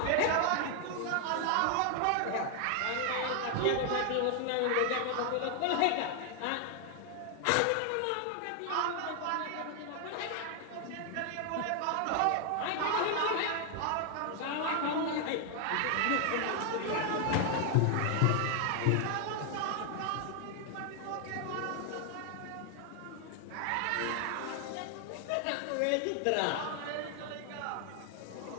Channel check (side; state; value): both; different; correlation 0.00